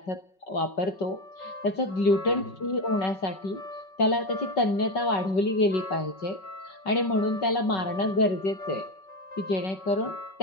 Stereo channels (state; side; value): late; right; 5.3 ms